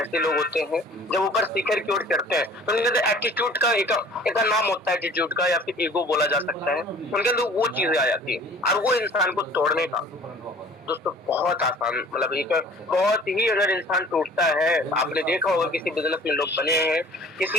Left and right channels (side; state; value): both; normal; correlation 0.49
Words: लोग होते हैं जब ऊपर शिखर की ओर चढ़ते हैं तो उनके अंदर एटीट्यूड का एक नाम होता है, एटीट्यूड का, या फिर ईगो बोला जा सकता है। उनके अंदर वो चीजें आ जाती है और वो इंसान को तोड़ने का दोस्तों बहुत आसान, मतलब एक बहुत ही, अगर इंसान टूटता है, आपने देखा होगा किसी बिजनेस में लोग बने हैं, किसी